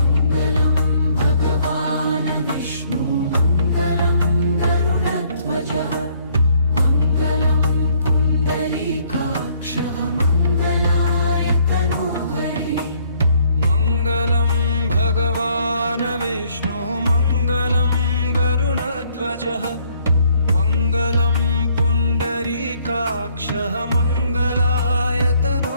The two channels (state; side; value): inverted; both; correlation -0.66